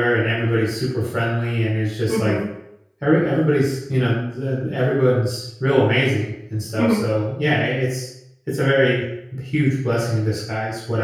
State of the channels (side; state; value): both; identical; correlation 1.00